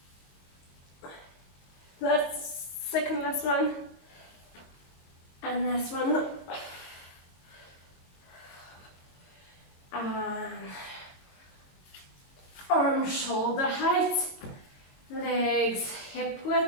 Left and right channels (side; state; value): right; late; 22 ms